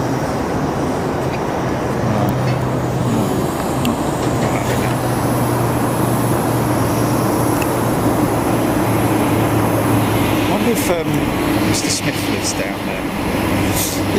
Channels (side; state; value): both; identical; correlation 1.00